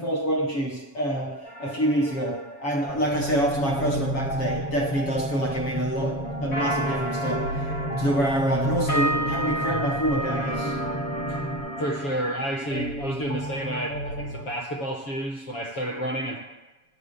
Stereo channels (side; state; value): right; late; 7.2 ms